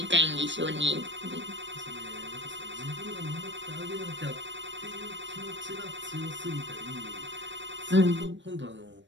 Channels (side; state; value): left; late; 0.53 ms